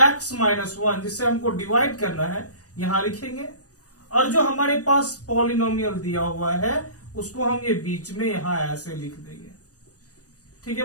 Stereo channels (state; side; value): late; right; 0.67 ms